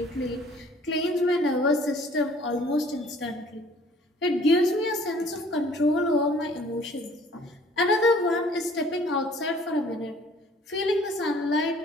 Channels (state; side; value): normal; both; correlation 0.55